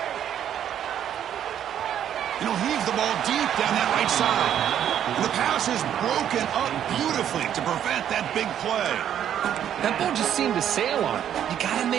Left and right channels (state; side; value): quieter; left; 10.0 dB